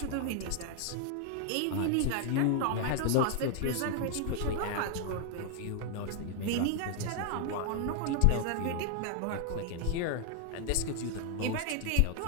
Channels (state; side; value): different; both; correlation 0.00